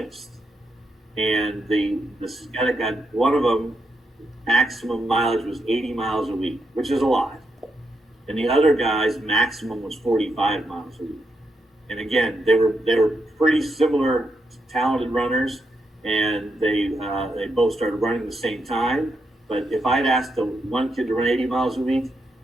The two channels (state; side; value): normal; both; correlation 0.82